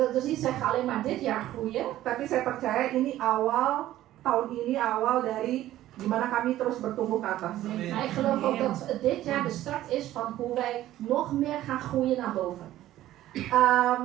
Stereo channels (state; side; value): quieter; left; 14.1 dB